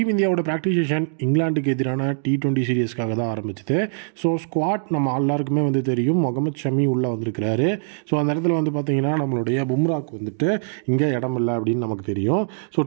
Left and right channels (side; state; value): left; silent; digital silence